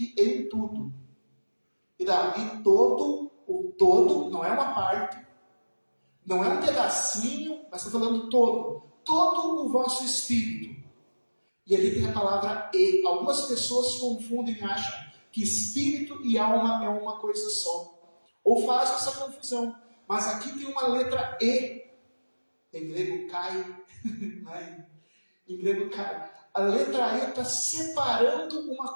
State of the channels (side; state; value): both; inverted; correlation -1.00